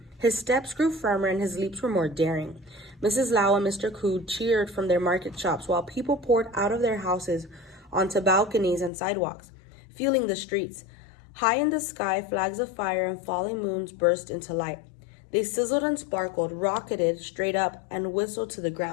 His steps grew firmer, and his leaps were more daring. Mrs. Lau and Mr. Ku cheered from their market shops, while people poured out of their houses onto balconies and sidewalks, filling the streets. High in the sky, flags of fire and falling moons burst into light. They sizzled and sparkled, rocketed straight up, and whistled to the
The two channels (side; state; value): right; drops out; at 8.9 s